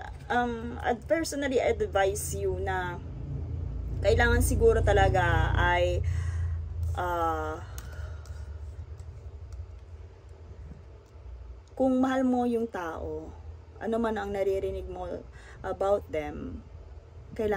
personally, I advise you na kailangan siguro talaga ay kung mahal mo yung tao, ano man ang naririnig mo about them,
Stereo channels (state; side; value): identical; both; correlation 1.00